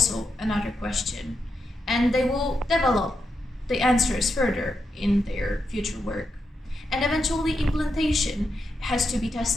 another question, and they will develop the answers further in their future work. And eventually implantation has to be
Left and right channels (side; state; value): both; normal; correlation 0.85